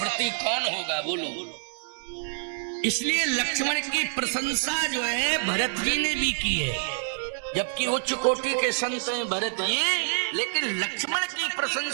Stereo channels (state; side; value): silent; left; digital silence